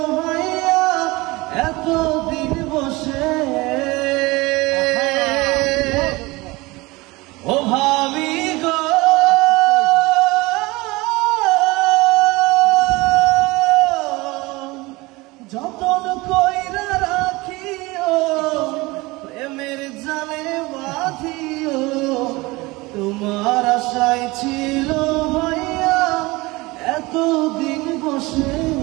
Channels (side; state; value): left; quieter; 22.3 dB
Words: ভাইয়া এতদিন বসে। ও ভাবি গো যতন কইরা রাখিও প্রেমের জালে বাঁধিও তোমার আশায় ছিল ভাইয়া এতদিন বসে।